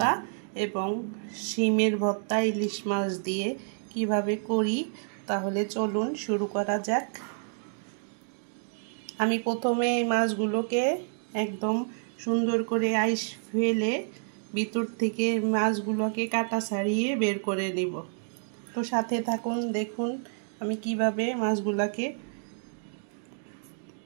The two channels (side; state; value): left; silent; 59 dB below the other